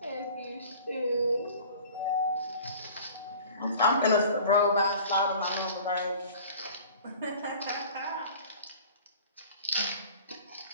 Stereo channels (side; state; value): both; inverted; correlation -0.44